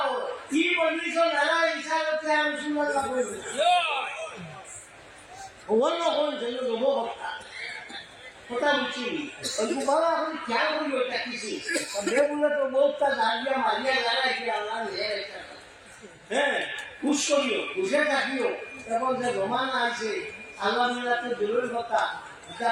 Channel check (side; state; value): both; identical; correlation 1.00